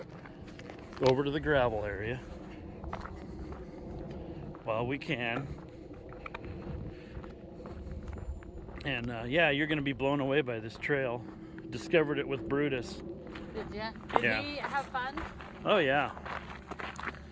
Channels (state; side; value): identical; both; correlation 1.00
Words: over to the gravel area while we can. And yeah, you're gonna be blown away by this trail. Discovered it with Brutus. Did you? Did Yeah. he have fun? Oh yeah.